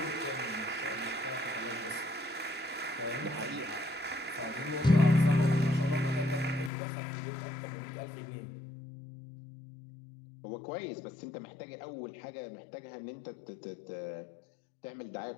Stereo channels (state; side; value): drops out; right; at 6.7 s